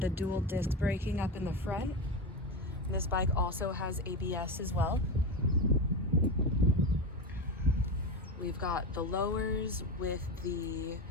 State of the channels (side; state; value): both; normal; correlation 0.18